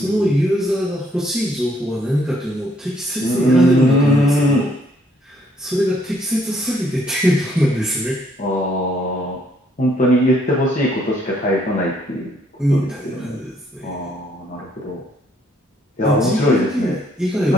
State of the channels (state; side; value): normal; both; correlation 0.68